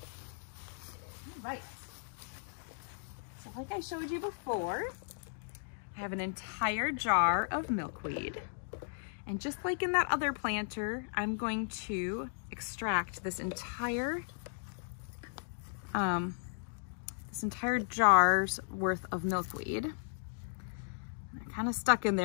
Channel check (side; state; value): right; silent; digital silence